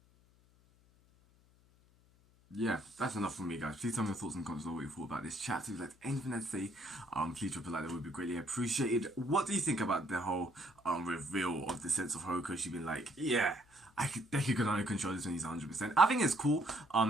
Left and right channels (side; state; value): left; noise; hum, 30 dB below the sound